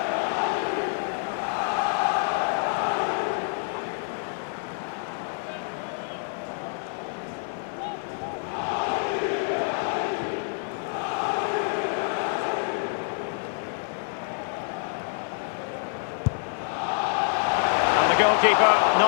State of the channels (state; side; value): silent; right; 60 dB below the other